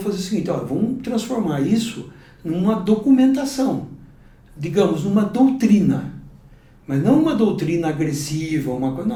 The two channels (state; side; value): identical; both; correlation 1.00